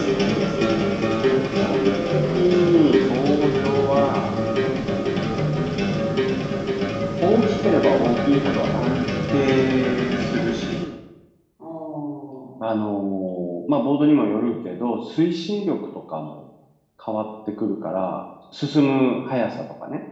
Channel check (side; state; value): both; identical; correlation 1.00